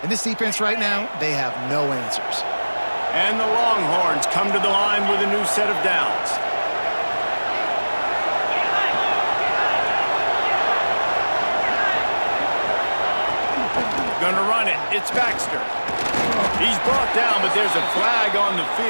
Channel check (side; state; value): both; inverted; correlation -1.00